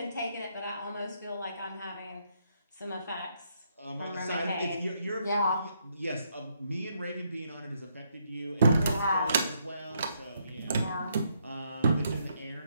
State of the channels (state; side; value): inverted; both; correlation -0.75